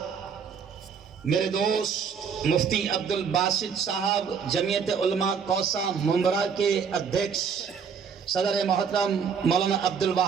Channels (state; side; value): quieter; left; 6.4 dB